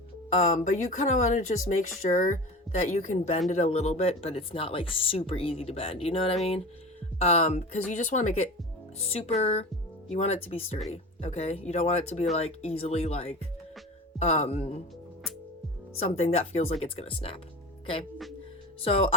but you kind of want to just make sure that you can bend it a little bit, but it's not like super easy to bend, you know what I mean? Because you just want to make it super, you want it to be sturdy, okay? You don't want it to be like easily like something that feels like it's gonna snap, okay? So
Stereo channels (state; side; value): normal; both; correlation 0.32